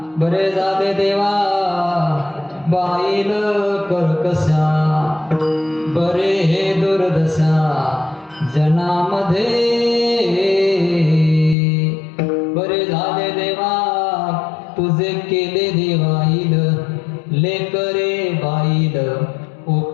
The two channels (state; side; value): drops out; right; at 11.6 s